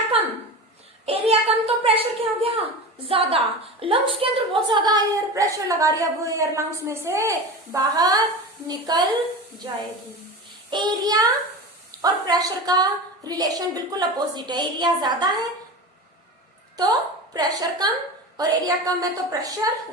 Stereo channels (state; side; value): normal; both; correlation 0.29